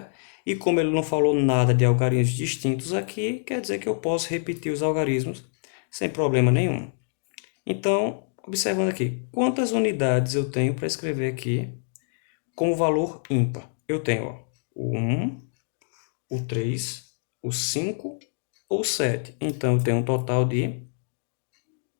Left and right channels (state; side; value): silent; right; digital silence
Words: E como ele não falou nada de algarismos distintos aqui, quer dizer que eu posso repetir os algarismos sem problema nenhum. Então, observando aqui, quantas unidades eu tenho para escrever aqui como valor ímpar? Eu tenho o 1, o 3, o 5 ou 7. Então, eu tenho um total de